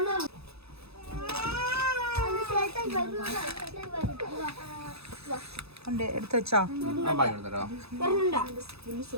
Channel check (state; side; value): late; left; 0.79 ms